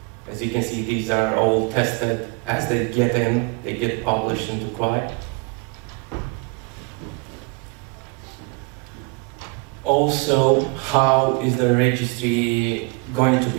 as you can see, these are all tested as they get in, they get published into QI. Also, how is the registry going to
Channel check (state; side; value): quieter; left; 30.9 dB